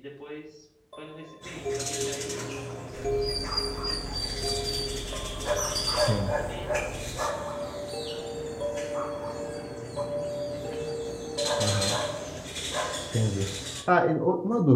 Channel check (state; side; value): identical; both; correlation 1.00